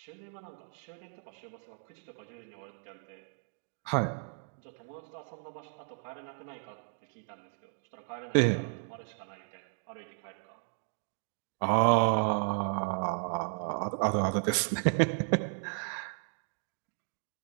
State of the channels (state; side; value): silent; left; 55 dB below the other